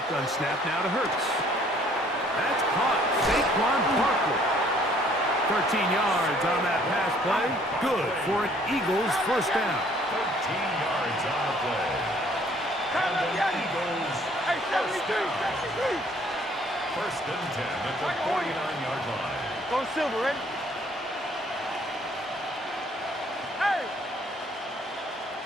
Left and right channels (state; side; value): normal; both; correlation 0.60